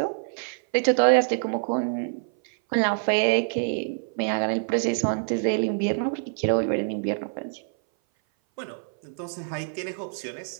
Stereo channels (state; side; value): silent; left; 58 dB below the other